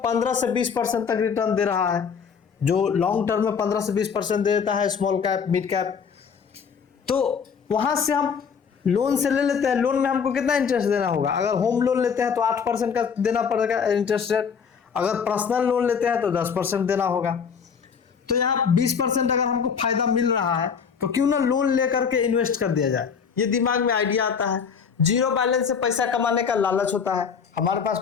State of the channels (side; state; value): right; quieter; 6.5 dB